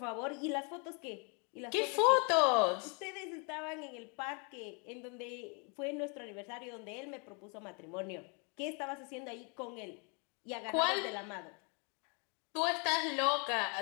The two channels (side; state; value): right; quieter; 35.1 dB